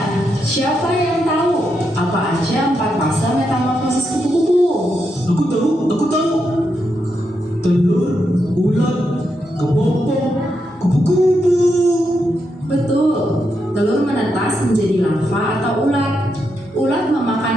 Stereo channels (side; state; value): both; normal; correlation 0.83